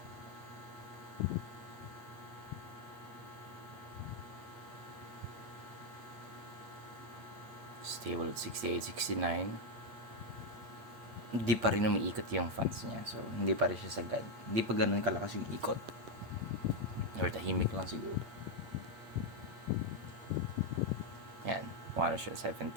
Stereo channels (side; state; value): left; late; 8.9 ms